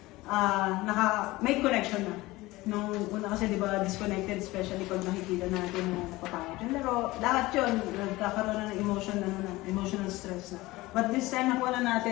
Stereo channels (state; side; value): quieter; right; 19.6 dB